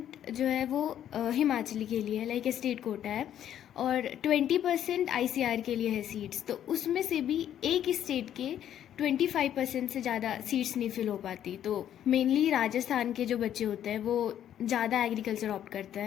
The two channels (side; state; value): right; quieter; 10.5 dB